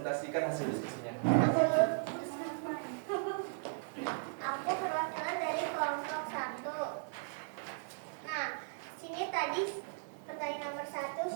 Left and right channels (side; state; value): left; silent; digital silence